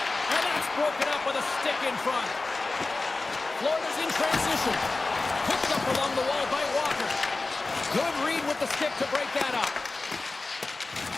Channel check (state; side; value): quieter; right; 3.4 dB